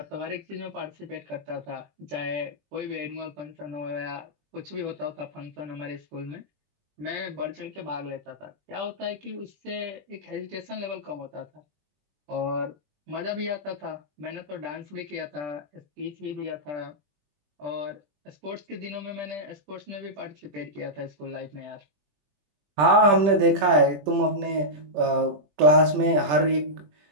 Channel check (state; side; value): late; left; 20 ms